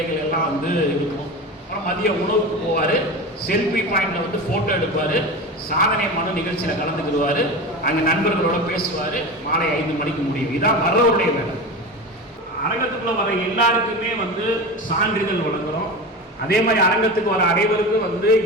எல்லாம் வந்து இருக்கும். அப்புறம் மதிய உணவுக்கு போவார், செல்ஃபி பாயிண்டில் வந்து ஃபோட்டோ எடுப்பார், சாதனை மனு நிகழ்ச்சியில் கலந்துக்கிடுவார், அங்கே நண்பர்களோட பேசுவார். மாலை 5 மணிக்கு முடியும். இதுதான் வர்றவருடைய வேலை. அரங்கத்துக்குள்ளே வர எல்லாருக்குமே வந்து சான்றிதழ் வழங்குகிறோம். அதே மாதிரி அரங்கத்துக்கு வர அனைவருக்கும் வந்து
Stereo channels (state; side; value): normal; both; correlation 0.27